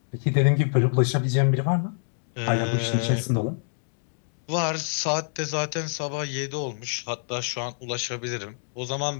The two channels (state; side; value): silent; right; digital silence